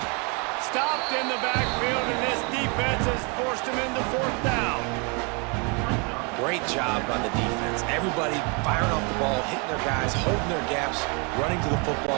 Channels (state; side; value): quieter; left; 32.8 dB